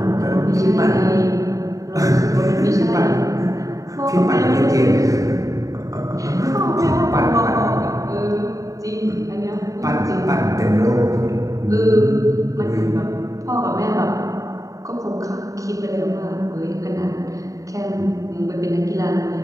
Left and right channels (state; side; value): late; left; 0.16 ms